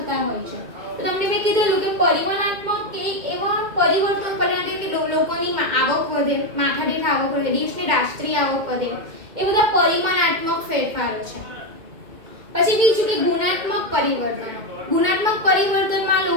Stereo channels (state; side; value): late; left; 2.2 ms